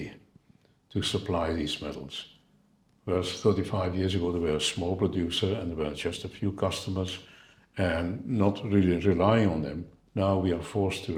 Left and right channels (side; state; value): both; identical; correlation 1.00